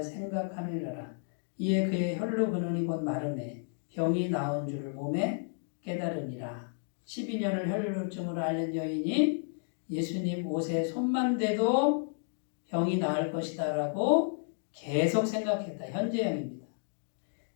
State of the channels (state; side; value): silent; right; digital silence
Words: 생각하밀러라. 이에 그의 혈로 근원이 곧 마르매 병이 나은 줄을 몸에 깨달으니라. 12년을 혈루증으로 앓는 여인이 예수님 옷에 손만 대도 병이 나을 것이다 라고 계속 생각했다. 현재형입니다.